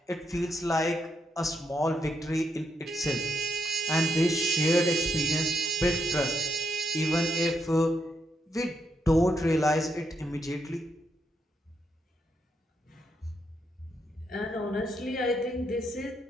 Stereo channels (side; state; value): both; normal; correlation 0.80